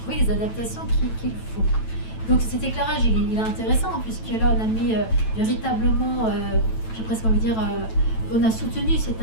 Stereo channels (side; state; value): right; late; 9.1 ms